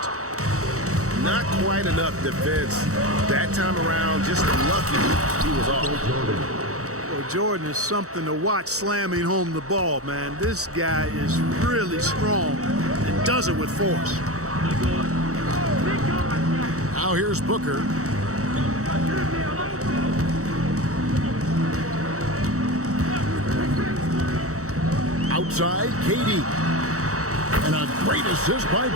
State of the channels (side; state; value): left; late; 0.65 ms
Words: Not quite enough defense that time around. Just lucky he was off. Well, Jordan is something to watch slamming home the ball, man. This guy is really strong and does it with force. Now here's Booker. Outside, KD. And a great assist by